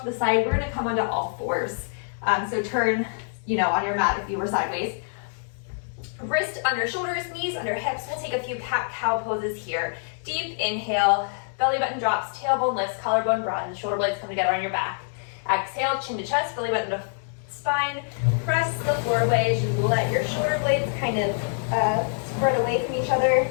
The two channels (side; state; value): right; silent; digital silence